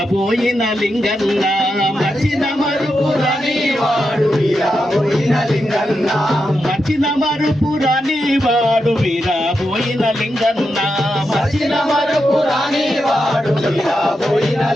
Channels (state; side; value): normal; both; correlation 0.86